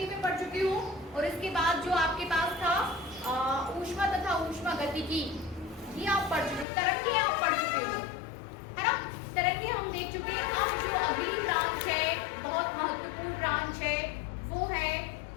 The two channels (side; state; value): right; drops out; at 6.7 s